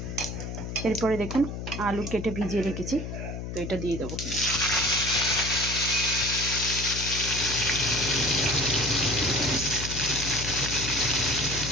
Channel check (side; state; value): left; noise; hum, 6 dB below the sound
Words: এরপরে দেখুন আলু কেটে ভিজিয়ে রেখেছি, তো এটা দিয়ে দেবো।